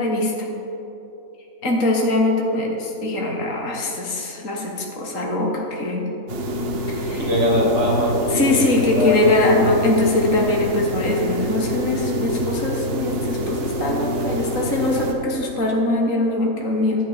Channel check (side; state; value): right; late; 3.8 ms